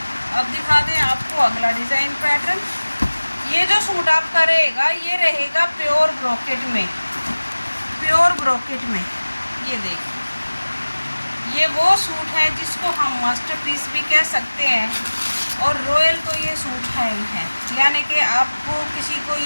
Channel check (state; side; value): inverted; both; correlation -1.00